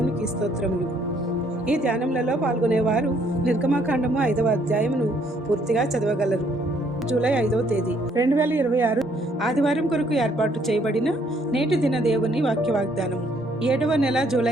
స్తోత్రములు. ఈ ధ్యానములలో పాల్గొనేవారు నిర్గమాకాండము 5వ అధ్యాయమును పూర్తిగా చదవగలరు. జూలై 5వ తేదీ 2026 ఆదివారం కొరకు ఏర్పాటు చేయబడిన నేటి దిన దేవుని వాక్య వాగ్దానము. 7వ నెల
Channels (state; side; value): normal; both; correlation 0.66